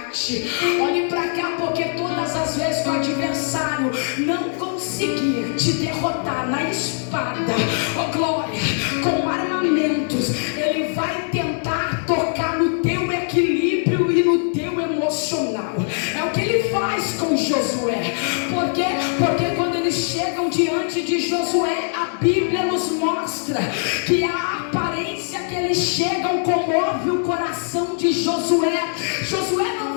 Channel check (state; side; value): silent; right; 61 dB below the other